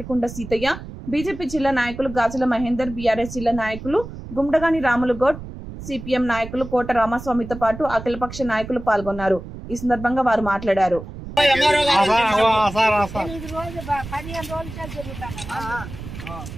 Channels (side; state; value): right; noise; rumble, 12 dB below the sound